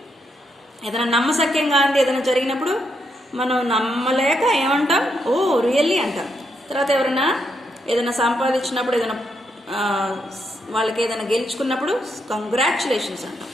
ఏదైనా నమ్మశక్యంగా అంది ఏదైనా జరిగినప్పుడు మనం నమ్మలేక ఏమంటాం? ఓ రియల్లీ అంటాం. తర్వాత ఎవరైనా ఏదైనా సంపాదించినప్పుడు, ఏదైనా వాళ్ళకి ఏదైనా గెలుచుకున్నప్పుడు కంగ్రాచులేషన్స్ అంటాం.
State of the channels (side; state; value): both; normal; correlation 0.79